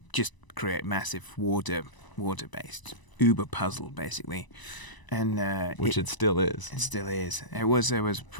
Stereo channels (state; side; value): late; right; 1.0 ms